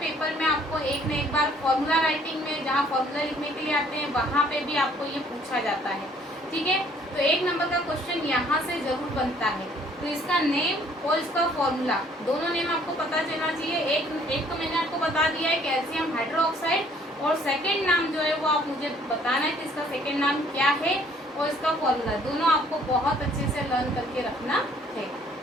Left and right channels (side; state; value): both; normal; correlation 0.60